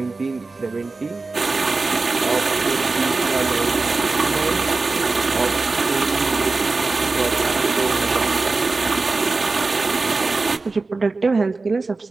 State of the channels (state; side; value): quieter; left; 3.7 dB